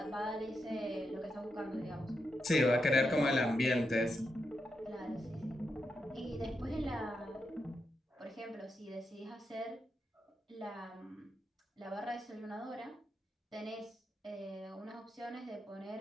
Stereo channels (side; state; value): both; normal; correlation 0.85